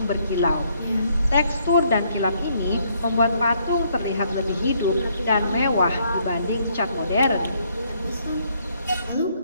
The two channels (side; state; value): both; inverted; correlation -0.70